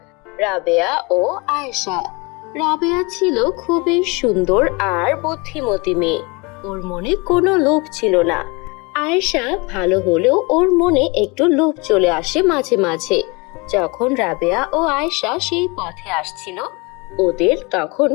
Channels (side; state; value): right; quieter; 27.7 dB